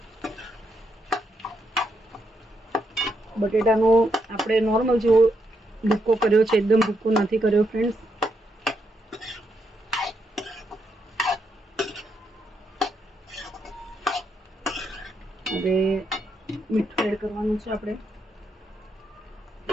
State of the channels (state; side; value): normal; both; correlation 0.79